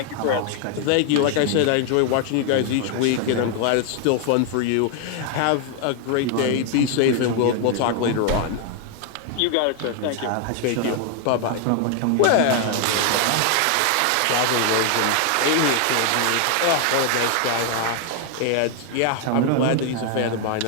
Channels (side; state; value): both; different; correlation 0.00